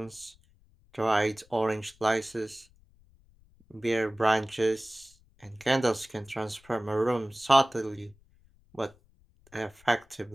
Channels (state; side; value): noise; left; rumble, 30 dB below the sound